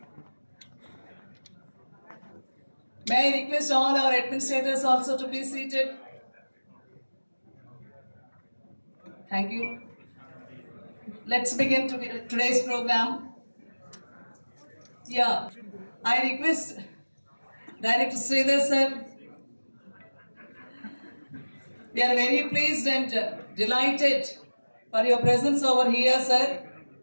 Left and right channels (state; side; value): inverted; both; correlation -1.00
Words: May I request all our administrators also to be seated? Thank you. Let's begin today's program. Yeah, I request Director Sridhar sir. We are very pleased and delighted for your presence over here, sir.